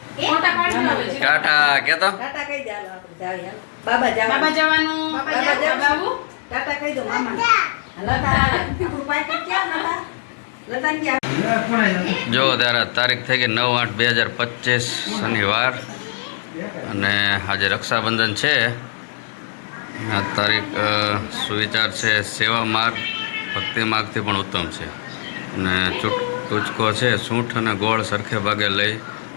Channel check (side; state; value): right; silent; digital silence